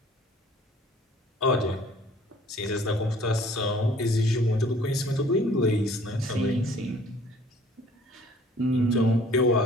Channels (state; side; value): normal; both; correlation 0.54